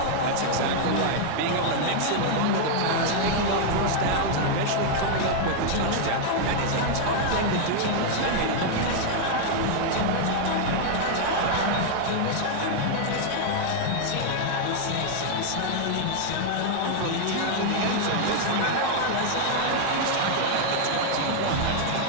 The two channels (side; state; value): both; different; correlation 0.00